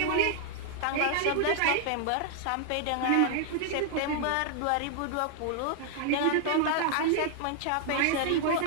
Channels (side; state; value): both; different; correlation 0.00